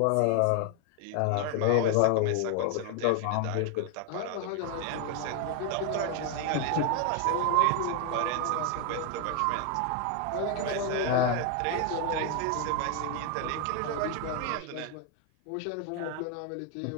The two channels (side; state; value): both; different; correlation 0.01